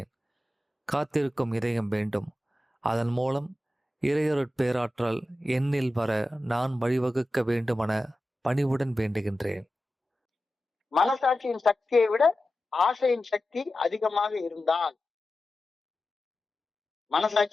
காத்திருக்கும் இதயம் வேண்டும். அதன் மூலம் இறையருட்பேராற்றல் என்னில் வர நான் வழிவகுக்க வேண்டுமென பணிவுடன் வேண்டுகின்றேன். மனசாட்சியின் சக்தியை விட ஆசையின் சக்தி அதிகமாக இருந்தால்,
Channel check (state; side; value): normal; both; correlation 0.93